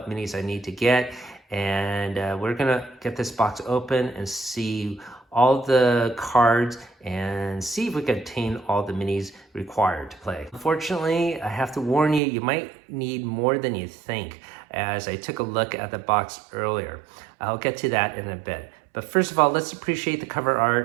minis I need to get. And we're going to get this box open and see all the cards and see if we can obtain all the minis required to play. Unfortunately, I have to warn you, you might need more than you think, as I took a look at the box earlier. I'll get to that in a bit. But first of all, let's appreciate the cover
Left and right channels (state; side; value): drops out; left; at 12.2 s